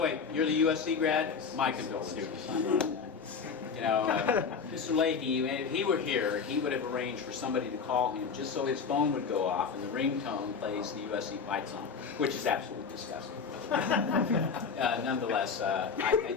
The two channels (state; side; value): quieter; right; 5.7 dB